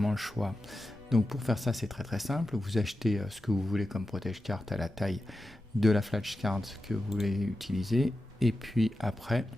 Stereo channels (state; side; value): normal; both; correlation 0.91